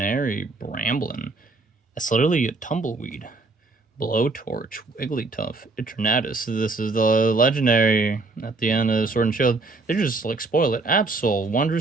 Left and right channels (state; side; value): quieter; left; 3.6 dB